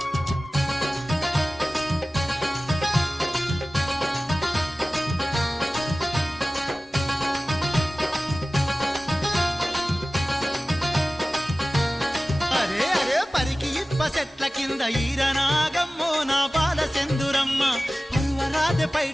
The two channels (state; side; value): normal; both; correlation 0.97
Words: చెట్ల కింద ఈరనాగమ్మో నా బాల సెందురమ్మ పర్వరాజ